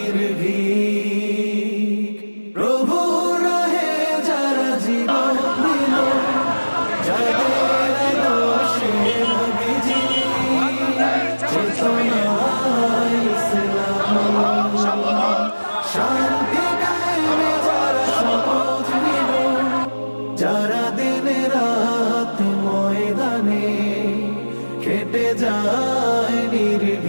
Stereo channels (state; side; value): inverted; both; correlation -1.00